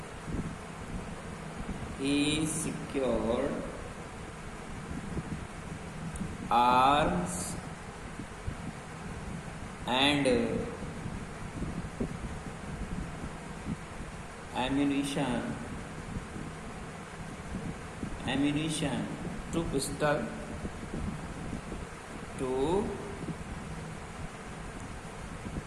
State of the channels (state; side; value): identical; both; correlation 1.00